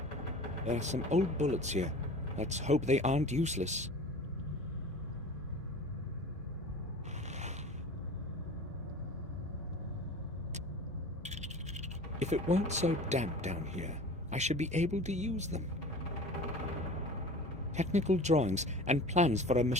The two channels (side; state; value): both; normal; correlation 0.39